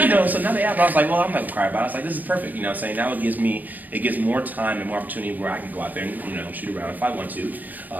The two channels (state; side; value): late; left; 0.086 ms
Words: you know, so now they have. I was like, well, I'm not gonna cry about it. I was like, this is perfect. You know, what I'm saying now it gives more time and more opportunity where I can go out there and, you know, shoot around if I want to,